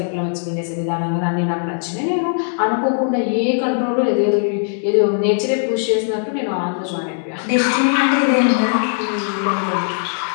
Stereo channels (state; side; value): silent; right; digital silence